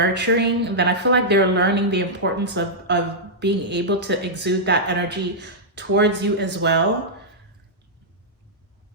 then I feel like they're learning the importance of being able to exude that energy towards you as well.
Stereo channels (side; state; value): both; normal; correlation -0.09